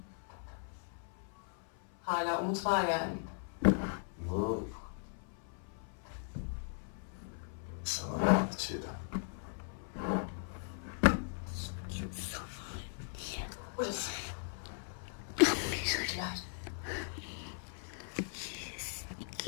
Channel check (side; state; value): right; silent; 52 dB below the other